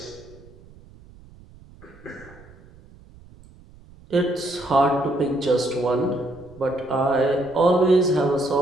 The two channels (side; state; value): right; noise; rumble, 23 dB below the sound